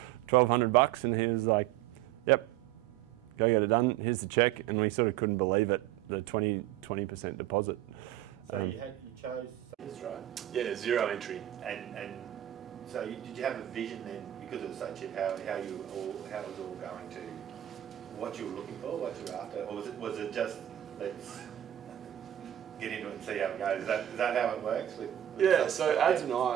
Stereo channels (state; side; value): quieter; left; 12.4 dB